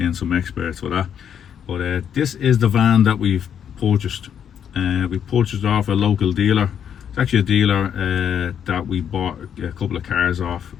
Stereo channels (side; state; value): right; quieter; 8.6 dB